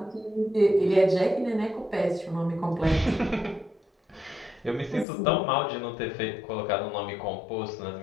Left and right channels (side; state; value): right; drops out; at 5.1 s